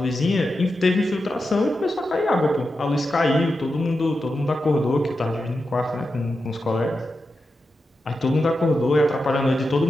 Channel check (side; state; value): both; normal; correlation 0.89